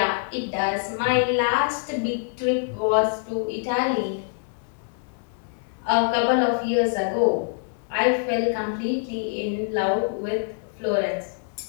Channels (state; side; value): silent; right; 62 dB below the other